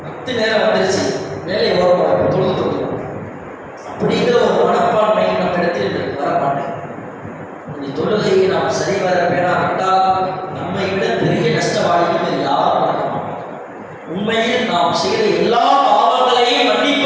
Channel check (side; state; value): both; identical; correlation 1.00